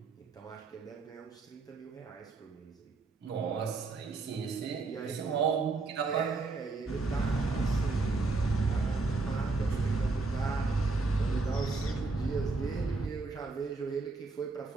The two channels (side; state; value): left; quieter; 3.7 dB